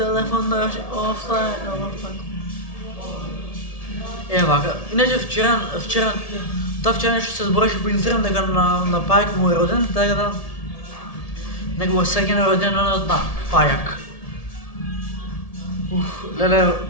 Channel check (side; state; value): right; late; 1.7 ms